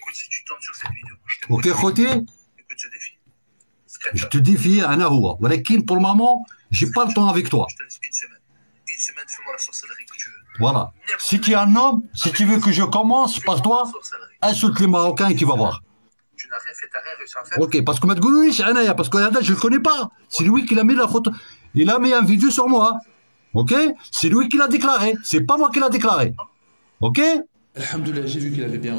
si tu tombes sur cette vidéo, je te Ok, خوتي, écoute ce défi. je te défie, أنا هو, ولكن pour le moment, j'ai pas le temps avec toi. Je te laisse une semaine. Une semaine, fais-moi la sorcellerie que tu veux. Voilà. Si tu es un homme, si tu veux que je commence par toi, insulte les Marocains et tu vas voir. Tu n'as rien fait, t'as rien réussi à faire. Ok, parce que ما تقولوليش أنايا, parce que je le connais pas. C'est lui qui l'a mis la photo. Il a mis un vidéo sur moi. Ok? C'est lui qui l'a déclaré. C'est pas moi qui l'a déclaré. Ok? Alhamdoulilah, j'ai vu qu'il avait bien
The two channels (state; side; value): inverted; both; correlation -1.00